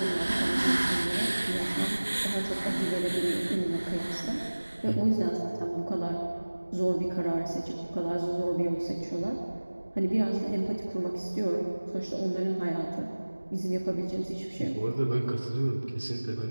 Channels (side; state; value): both; inverted; correlation -1.00